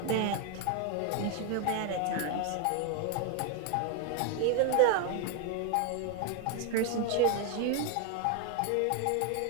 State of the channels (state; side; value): different; both; correlation 0.01